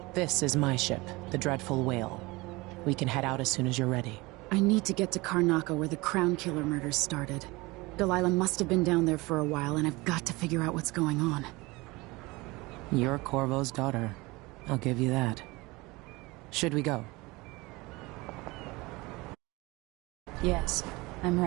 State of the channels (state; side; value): quieter; left; 22.8 dB